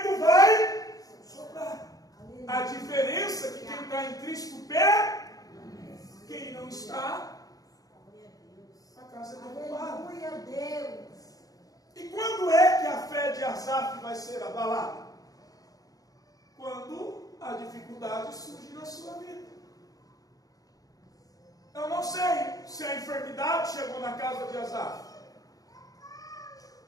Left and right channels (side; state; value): right; late; 0.18 ms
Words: vai soprar. A diferença é que quem está em Cristo pé, quem não está, a casa é derrubada. Aleluia, Deus. E quando é que a fé de Asaf vai ser abalada? Quando a dificuldade surge na sua vida. Eu não sei se a enfermidade chegou na casa de Asaf.